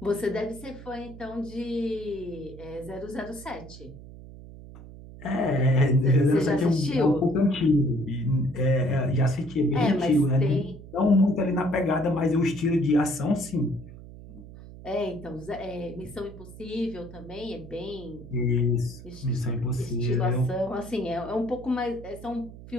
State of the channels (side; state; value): right; noise; hum, 16 dB below the sound